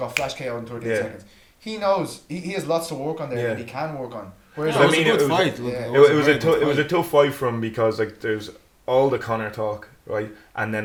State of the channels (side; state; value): both; identical; correlation 1.00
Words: flash KO in 13 Yeah. seconds. He knows he has lots to work on there, Yeah. and he can work on. Whereas It was I mean, a good it was- fight. Look, yeah. It a was very a good it was a fight. tough fight for him because like there's all the Conor talk, right? And